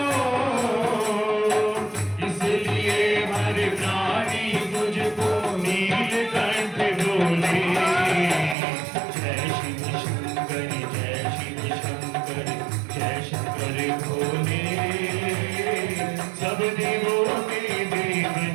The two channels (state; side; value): drops out; left; at 8.6 s